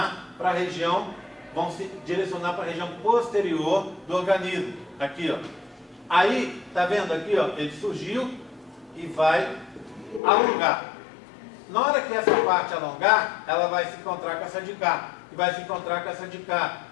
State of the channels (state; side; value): drops out; right; at 10.2 s